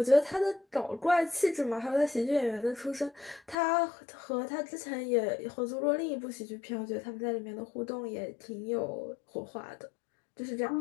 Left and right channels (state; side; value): drops out; right; at 3.6 s